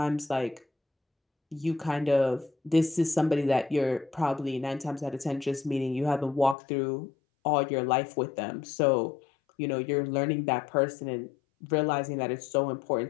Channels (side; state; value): right; drops out; at 6.6 s